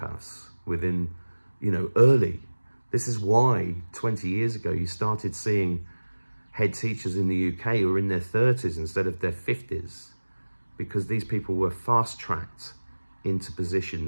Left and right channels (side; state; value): both; inverted; correlation -1.00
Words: within, you know, early. This is why 20 years ago you started seeing head teachers in the UK who were in their 30s instead of their 50s, because these people were fast-tracked into